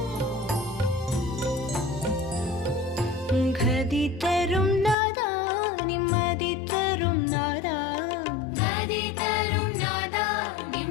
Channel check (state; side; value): drops out; right; at 5.0 s